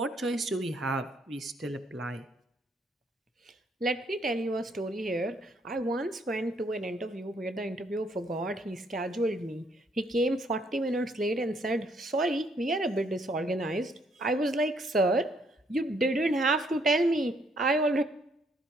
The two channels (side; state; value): both; normal; correlation 0.69